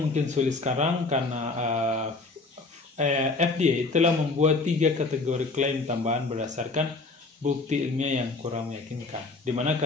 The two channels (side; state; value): right; quieter; 3.6 dB